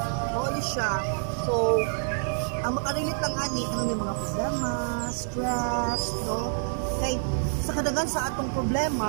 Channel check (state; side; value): silent; left; digital silence